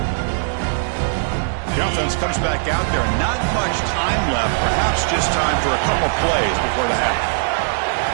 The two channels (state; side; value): silent; left; digital silence